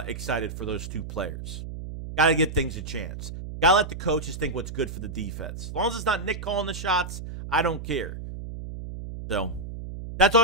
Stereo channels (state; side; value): noise; right; hum, 9 dB below the sound